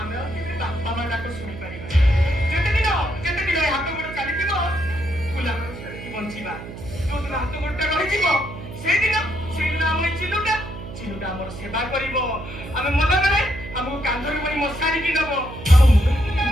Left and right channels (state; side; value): noise; right; hum, 12 dB below the sound